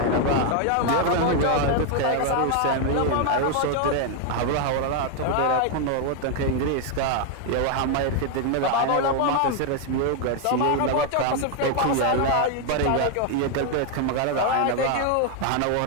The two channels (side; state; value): both; different; correlation 0.01